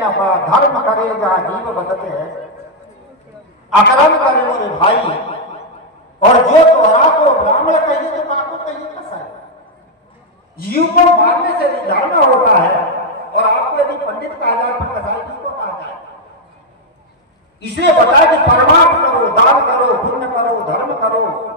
पड़ा, धर्म करे जहाँ जीव बदते हैं, अकर्म करे मोरे भाई, और जो तोहरा को ब्राह्मण कहिए तो काको कहिए कैसा है। जीव को मारने से धर्म होता है, और आपको यदि पंडित कहा जाए तो कसाई किसको कहा जाए। इसलिए बताया कि परमार्थ करो, दान करो, पुण्य करो, धर्म करो,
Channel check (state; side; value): normal; both; correlation -0.01